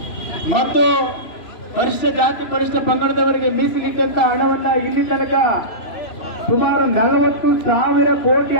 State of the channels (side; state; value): right; late; 3.0 ms